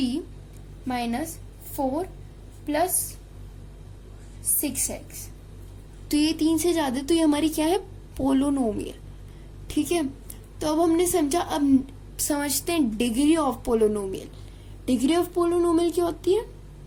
माइनस 4 प्लस 6x, तो ये 3 से ज्यादा, तो ये हमारी क्या है? पोलिनोमियल। ठीक है, तो अब हमने समझा। अब समझते हैं degree of polynomial. Degree of polynomial क्या होती है?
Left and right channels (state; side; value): identical; both; correlation 1.00